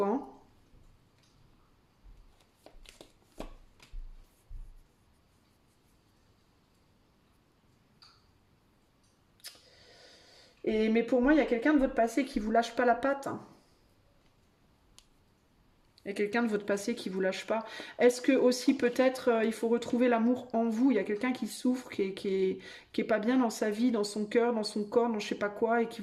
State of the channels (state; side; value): identical; both; correlation 1.00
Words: hein. Mais pour moi, il y a quelqu'un de votre passé qui vous lâche pas la patte, hein. Il y a quelqu'un de votre passé qui vous lâche pas. Est-ce que aussi peut-être il faut retrouver l'amour en vous? Il y a quelqu'un qui souffre, qui est pas bien dans sa vie, dans son cœur, dans son corps, dans je sais pas quoi, et qui